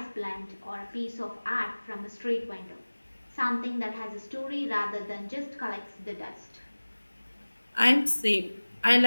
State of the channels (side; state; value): both; inverted; correlation -1.00